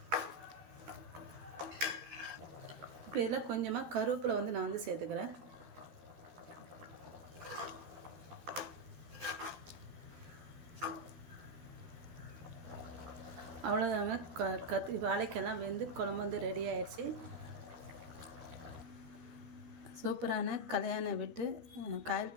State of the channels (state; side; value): late; left; 13 ms